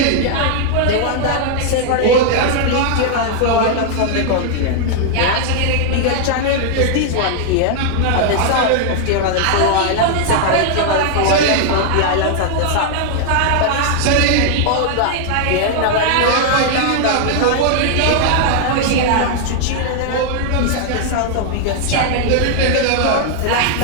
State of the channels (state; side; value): different; both; correlation 0.00